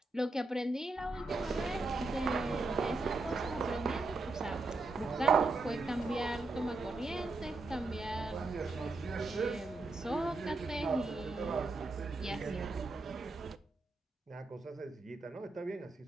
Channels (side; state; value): left; quieter; 3.4 dB